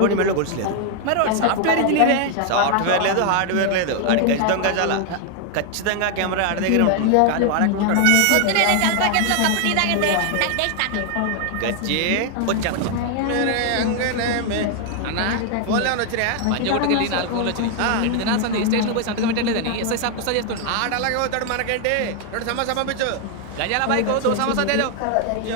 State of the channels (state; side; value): different; both; correlation 0.00